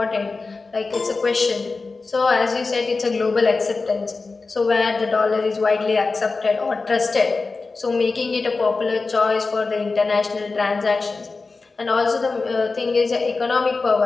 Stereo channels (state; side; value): quieter; right; 4.0 dB